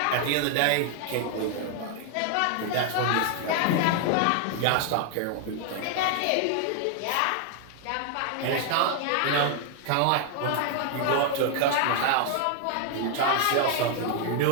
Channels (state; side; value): different; both; correlation 0.00